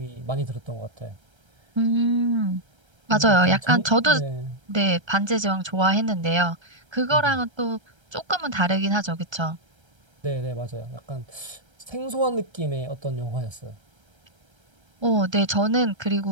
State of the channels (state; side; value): late; left; 1.3 ms